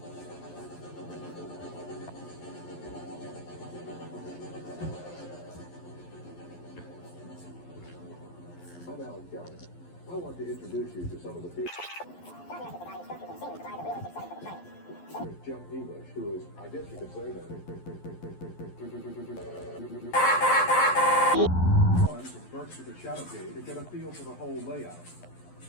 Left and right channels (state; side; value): late; right; 11 ms